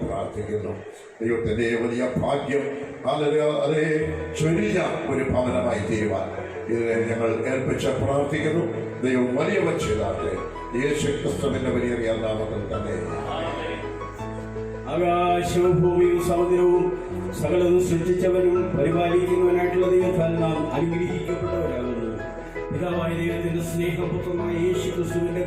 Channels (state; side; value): identical; both; correlation 1.00